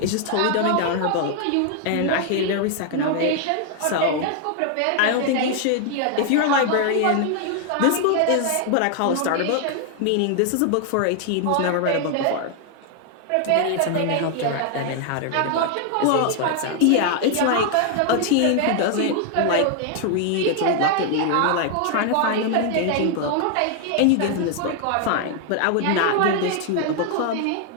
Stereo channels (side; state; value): both; different; correlation 0.00